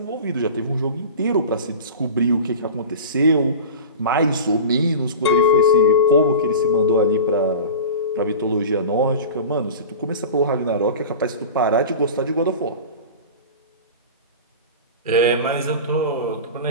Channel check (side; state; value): both; inverted; correlation -0.33